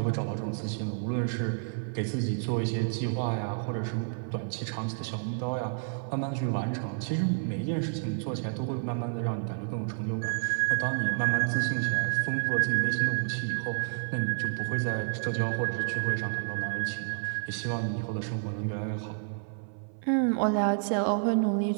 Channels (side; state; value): left; silent; 58 dB below the other